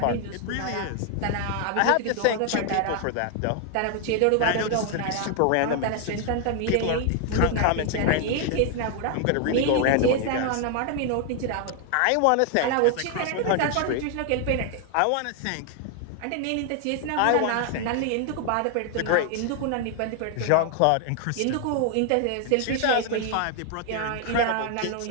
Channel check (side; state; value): both; different; correlation 0.00